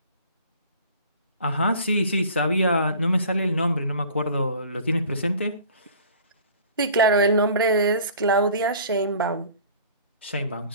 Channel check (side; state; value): both; inverted; correlation -0.46